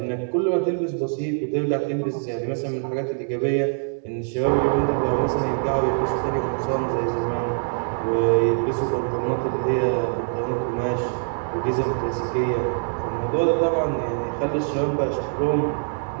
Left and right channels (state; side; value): silent; left; 63 dB below the other